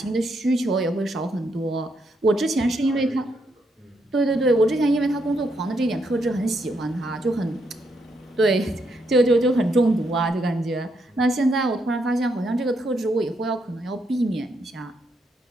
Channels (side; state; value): both; normal; correlation 0.77